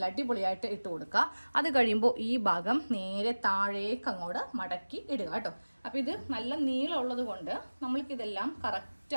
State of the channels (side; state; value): both; inverted; correlation -1.00